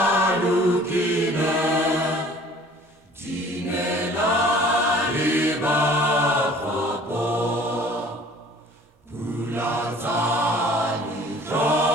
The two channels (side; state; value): both; normal; correlation 0.51